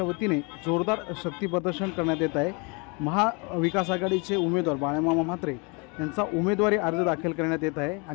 वतीने जोरदार शक्ती प्रदर्शन करण्यात येत आहे। महाविकास आघाडीचे उमेदवार बाळामामा म्हात्रे यांचा उमेदवारी अर्ज दाखल करण्यात येत आहे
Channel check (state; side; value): quieter; right; 31.2 dB